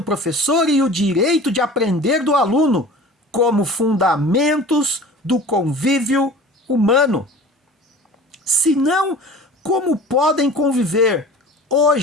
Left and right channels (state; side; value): normal; both; correlation 0.41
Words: professor e o direito de aprender do aluno como fundamentos do convívio humano. Senão, como podem conviver